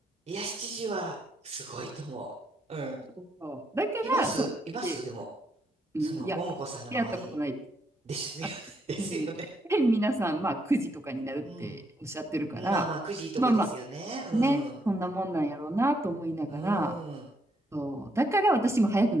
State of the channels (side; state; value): both; normal; correlation 0.76